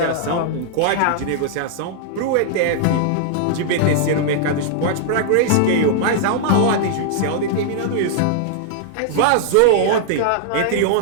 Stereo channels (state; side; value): different; both; correlation -0.01